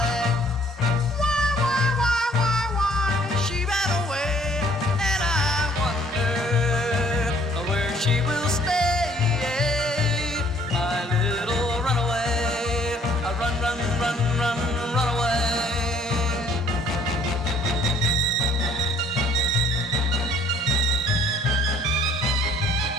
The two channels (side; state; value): both; normal; correlation 0.59